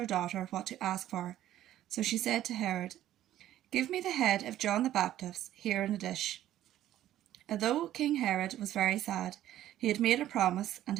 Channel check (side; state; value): left; quieter; 12.9 dB